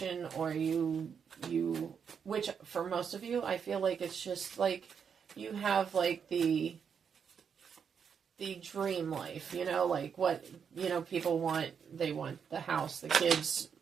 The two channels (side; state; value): left; quieter; 7.0 dB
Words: or you which for most of you, I feel like it's just like you have like the dream life, you know, like what, you know, people want. They want the house, the kids